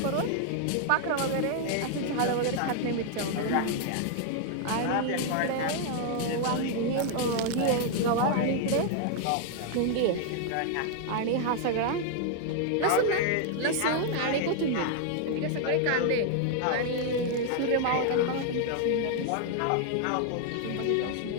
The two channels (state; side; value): different; both; correlation 0.00